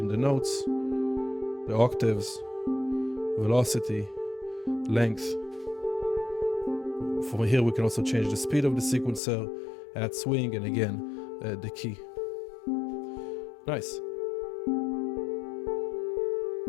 the notes, the octaves, velocity, length. From here we can also change the speed of the sequencer, add swing, and again the key. Nice.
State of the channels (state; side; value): drops out; right; at 9.2 s